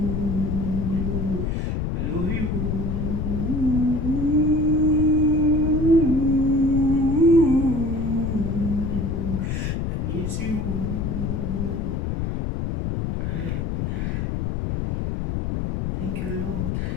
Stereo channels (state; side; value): noise; left; rumble, 1 dB below the sound